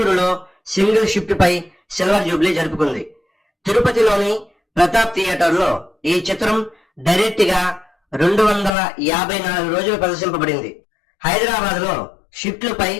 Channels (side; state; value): right; drops out; at 8.7 s